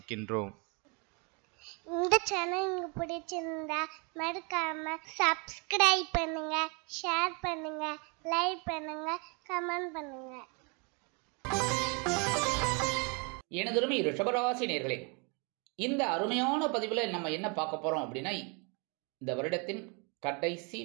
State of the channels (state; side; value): quieter; left; 33.0 dB